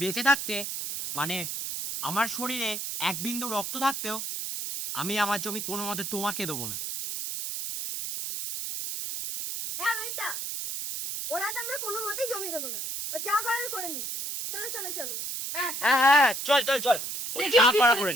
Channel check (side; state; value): right; noise; hiss, 4 dB below the sound